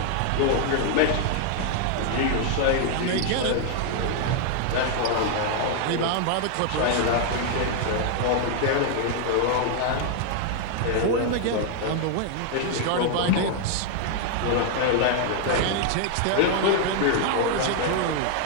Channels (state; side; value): different; both; correlation 0.00